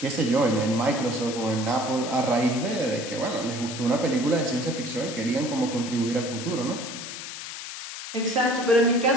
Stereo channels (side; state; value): left; noise; hiss, 9 dB below the sound